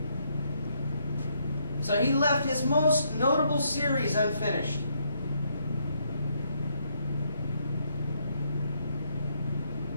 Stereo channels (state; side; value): inverted; both; correlation -0.74